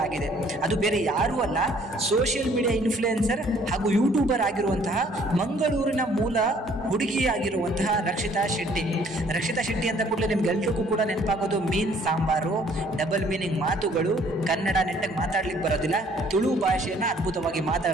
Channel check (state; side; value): normal; both; correlation 0.60